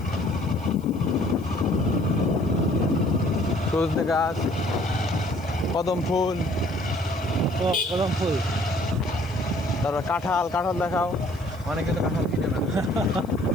সজনে গাছ, কদম ফুল, কদম ফুল, তারপর কাঁঠাল দেখাও। অনেকে তো কাঁঠাল কিনে না।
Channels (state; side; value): noise; left; hiss, 27 dB below the sound